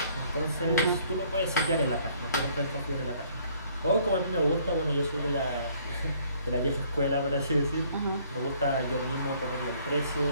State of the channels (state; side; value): inverted; both; correlation -0.61